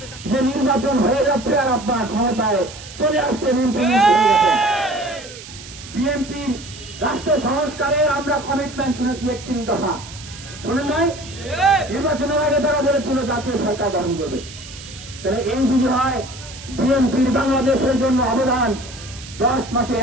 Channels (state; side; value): noise; right; hiss, 15 dB below the sound